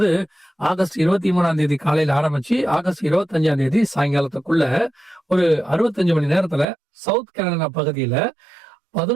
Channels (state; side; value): drops out; left; at 6.7 s